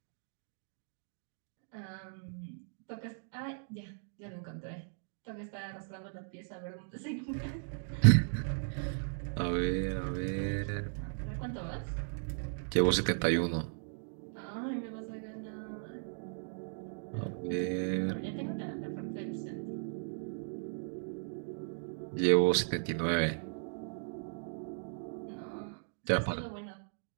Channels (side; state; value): left; silent; digital silence